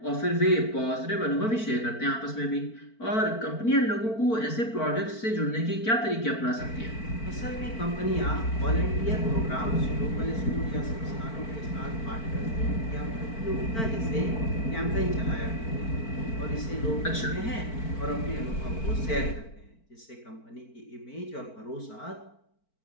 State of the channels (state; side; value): late; right; 4.5 ms